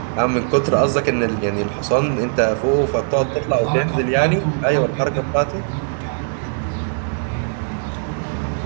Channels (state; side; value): silent; left; digital silence